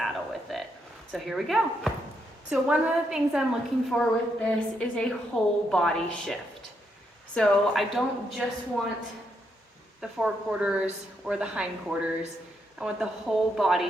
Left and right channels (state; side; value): normal; both; correlation 0.79